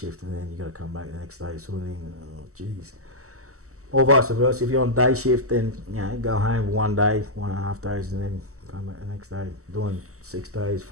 and then you got to come back the next day sort of thing. Oh, jeez. Or vice versa. If you're on day shift, then go home 1 day, 1.5 days, and then come back the next day. Doing 6 days,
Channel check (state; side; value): late; left; 0.64 ms